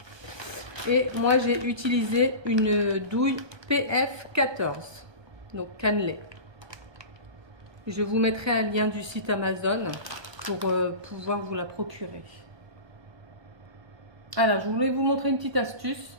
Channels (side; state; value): left; late; 1.2 ms